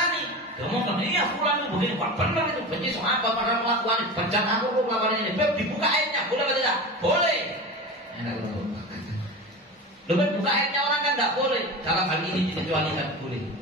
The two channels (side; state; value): both; normal; correlation 0.29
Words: Dia ngomong, iya fulan itu begini, wah benar itu, benci soal apa pada melakukan ini, bencana aku melakukan ini, dibuka airnya, boleh atau tidak? Boleh. Lebih buka airnya orang kan tidak boleh. Dalam hal ini dikecualikan boleh.